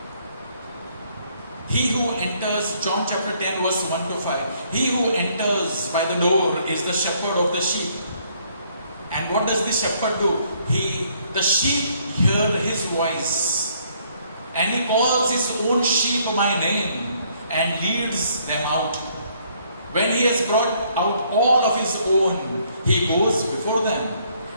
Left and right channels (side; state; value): both; inverted; correlation -0.67